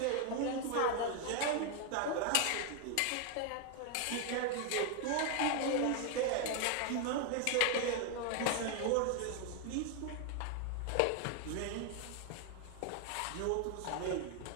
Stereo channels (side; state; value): both; different; correlation 0.01